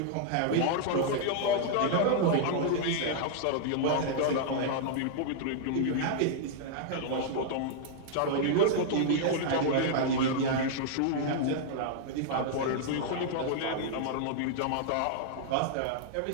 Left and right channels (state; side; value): different; both; correlation -0.01